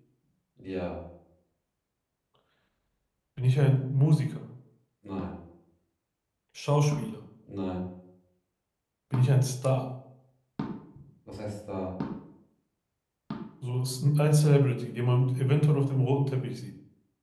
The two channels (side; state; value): both; identical; correlation 1.00